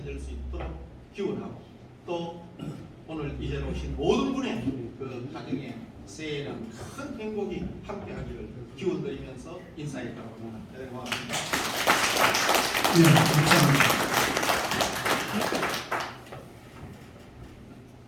수 있도록 기원하고, 또 오늘 이제 오신 모든 분의 그 가정에 새해에는 큰 행복이 함께하기를 기원드리면서 인사했다고 합니다. 네, 고맙습니다. 네, 감사합니다.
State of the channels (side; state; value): both; identical; correlation 1.00